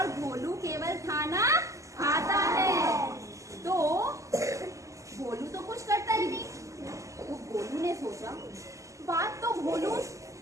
गोलू केवल खाना खाता है। तो गोलू तो कुछ करता ही नहीं। तो गोलू ने सोचा, बात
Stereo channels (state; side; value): late; left; 0.16 ms